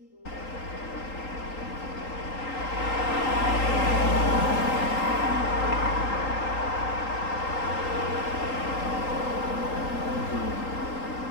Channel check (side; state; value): right; late; 3.8 ms